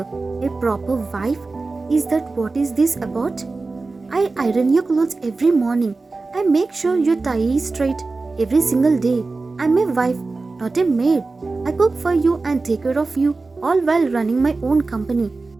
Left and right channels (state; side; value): quieter; left; 3.7 dB